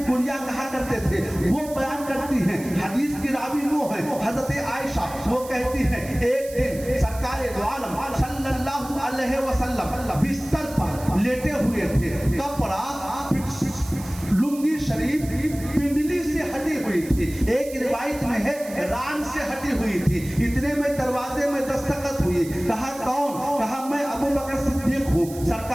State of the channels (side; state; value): right; noise; hiss, 16 dB below the sound